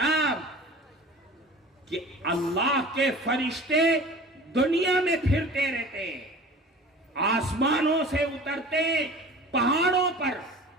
کہ اللہ کے فرشتے دنیا میں پھرتے رہتے ہیں، آسمانوں سے اترتے ہیں، پہاڑوں پر،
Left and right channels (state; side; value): normal; both; correlation 0.41